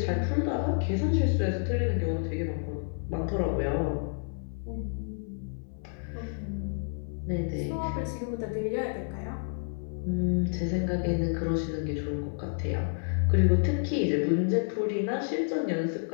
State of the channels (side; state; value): right; silent; 58 dB below the other